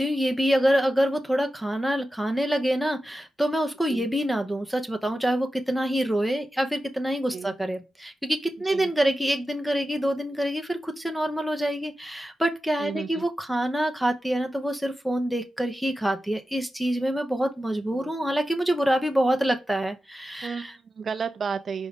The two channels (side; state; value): both; normal; correlation 0.92